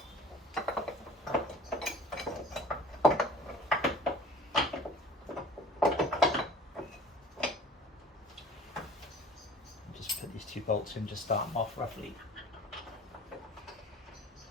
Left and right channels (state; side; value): normal; both; correlation 0.45